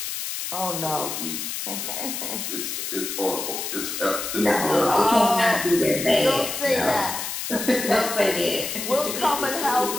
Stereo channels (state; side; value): noise; left; hiss, 4 dB below the sound